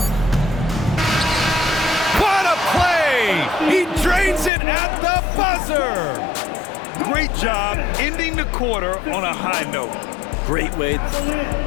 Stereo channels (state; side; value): drops out; right; at 4.5 s